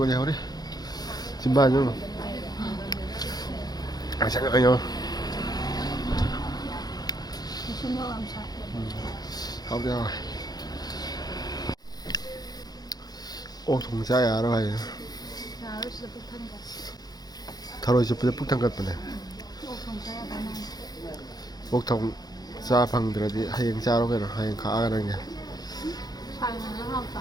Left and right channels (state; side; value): late; right; 0.19 ms